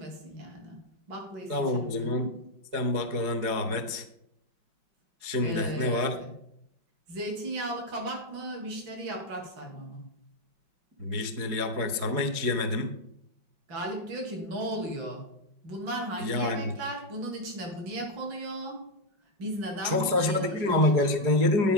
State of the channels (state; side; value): late; left; 4.8 ms